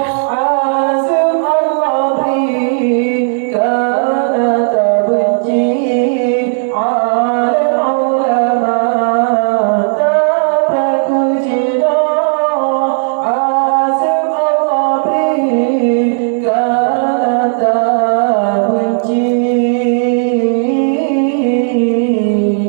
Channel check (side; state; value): left; silent; digital silence